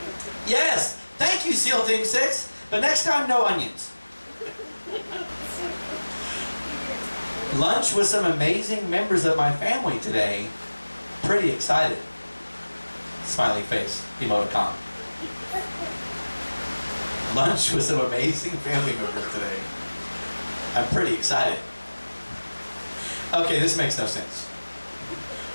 Yes, thank you, SEAL Team 6, but next time, no onions. Lunch with some amazing members of my family today. Pretty excited. Smiley face, emoticon. Lunch with some amazing family members today. I'm pretty excited. Okay, this makes no sense.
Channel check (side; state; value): both; inverted; correlation -1.00